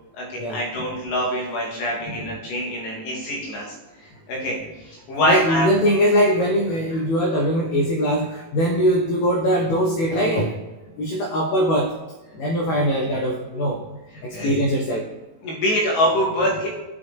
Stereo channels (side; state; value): right; late; 18 ms